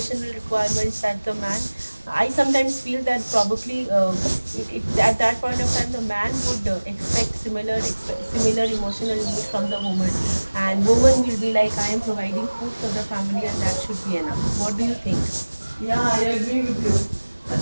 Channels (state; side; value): inverted; both; correlation -1.00